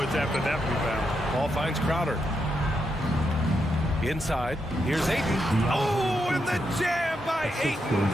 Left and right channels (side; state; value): both; normal; correlation 0.82